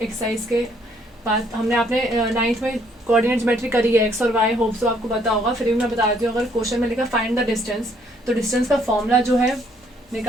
एक्सरसाइज के बाद। हमने आपने 9th में कोऑर्डिनेट ज्योमेट्री करी है, एक्स और वाई, होप सो आपको पता होगा। फिर भी मैं बता देती हूँ, अगर क्वेश्चन में लिखा फाइंड द डिस्टेंस, तो डिस्टेंस का फॉर्मूला जो है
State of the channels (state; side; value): normal; both; correlation 0.66